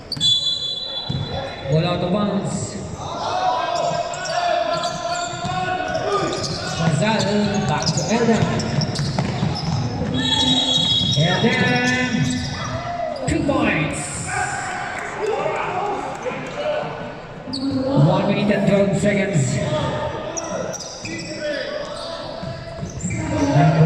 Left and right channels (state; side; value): identical; both; correlation 1.00